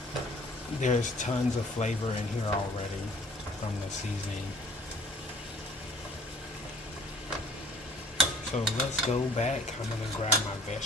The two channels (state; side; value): normal; both; correlation 0.53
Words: There's tons of flavor in here already from the seasoning. So let's go back. I'm going to grab my